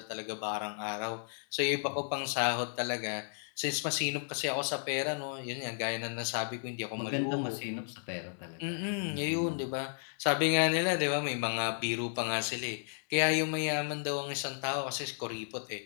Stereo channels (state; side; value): silent; right; digital silence